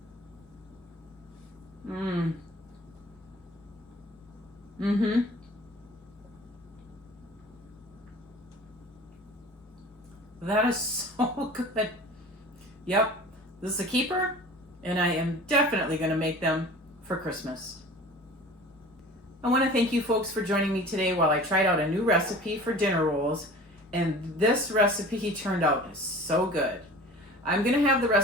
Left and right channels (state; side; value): normal; both; correlation 0.42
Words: That is so good. Yep, this is a keeper, and I am definitely going to make them for Christmas. I want to thank you folks for joining me today while I tried out a new recipe for dinner rolls, and this recipe turned out so good. I'm going to have the